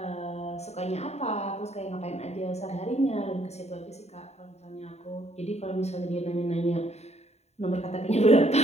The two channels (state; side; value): late; right; 0.32 ms